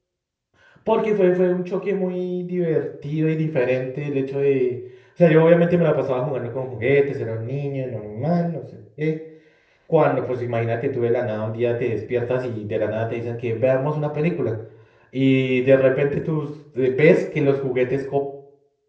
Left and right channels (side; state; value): both; identical; correlation 1.00